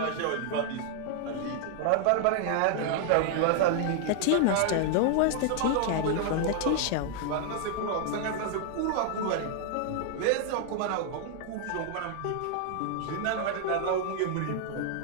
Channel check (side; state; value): both; different; correlation 0.00